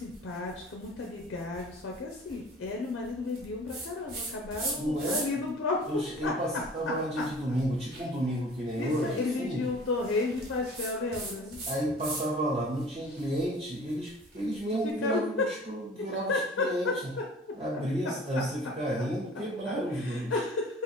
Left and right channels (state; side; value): normal; both; correlation 0.46